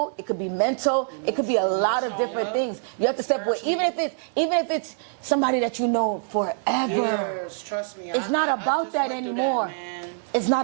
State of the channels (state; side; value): silent; left; 62 dB below the other